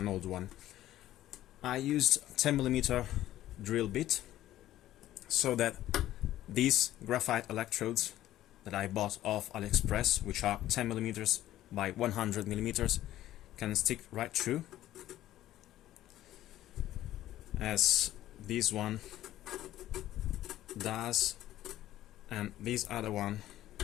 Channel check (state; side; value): quieter; right; 13.8 dB